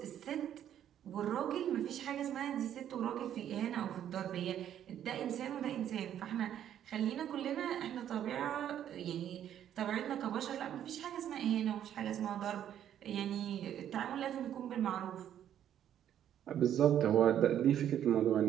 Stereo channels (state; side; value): quieter; left; 10.4 dB